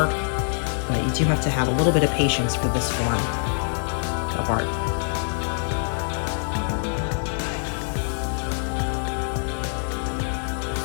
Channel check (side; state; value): right; silent; 62 dB below the other